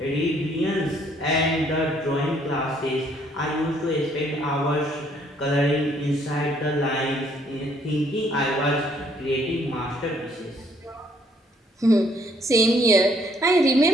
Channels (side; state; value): both; normal; correlation 0.66